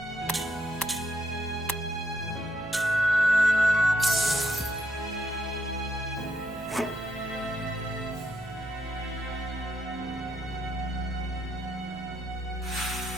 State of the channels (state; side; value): noise; right; rumble, 23 dB below the sound